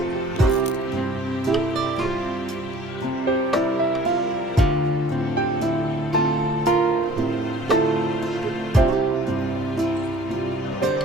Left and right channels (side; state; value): both; normal; correlation 0.51